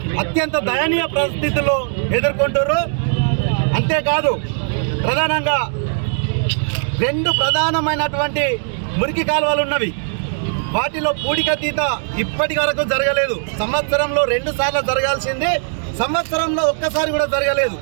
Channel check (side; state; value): left; silent; digital silence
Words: అత్యంత దయనీయ పరిస్థితుల్లో ఎదుర్కొంటారు. అంతేకాదు ప్రధానంగా 2 ప్రధానమైనటువంటి మురికి కాలువలు ఉన్నవి. వాటిలో పూడికతీత ఇప్పటి వరకు జరగలేదు. సంవత్సరంలో 2 సార్లు జరగాల్సింది సంవత్సరంలో ఒక్కసారి కూడా జరగలేదు.